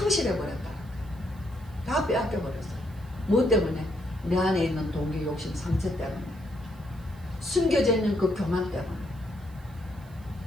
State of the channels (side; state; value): right; noise; hiss, 28 dB below the sound